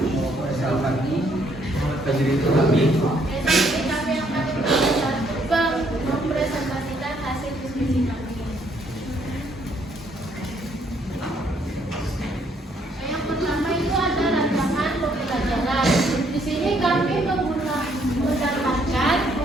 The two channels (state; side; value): normal; both; correlation 0.68